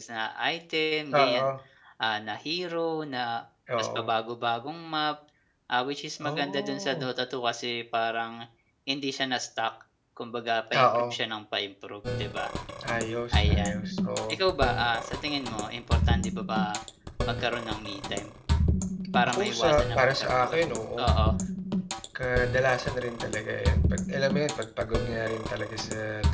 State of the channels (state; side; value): identical; both; correlation 1.00